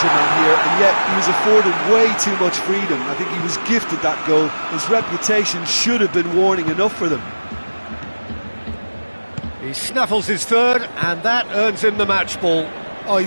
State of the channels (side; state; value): both; inverted; correlation -1.00